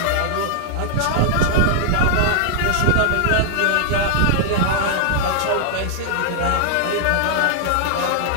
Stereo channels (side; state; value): both; different; correlation -0.01